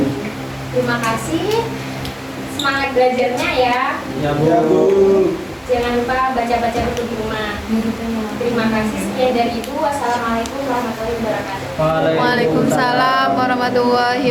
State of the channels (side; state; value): both; identical; correlation 1.00